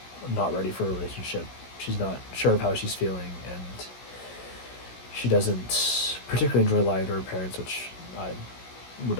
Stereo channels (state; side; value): late; right; 16 ms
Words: not ready for a relationship. She's not sure of how she's feeling, and she doesn't particularly enjoy lying to her parents, which I would